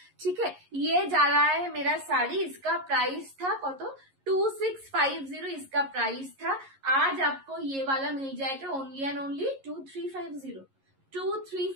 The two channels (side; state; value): left; late; 11 ms